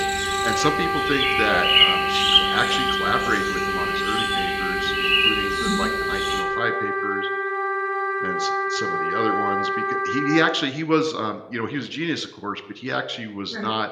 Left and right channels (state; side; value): identical; both; correlation 1.00